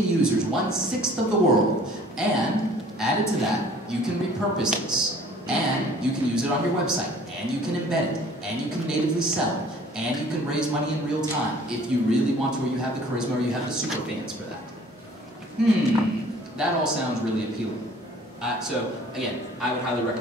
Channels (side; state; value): both; normal; correlation 0.52